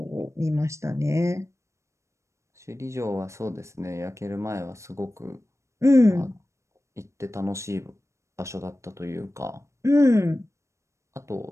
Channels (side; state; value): left; late; 0.14 ms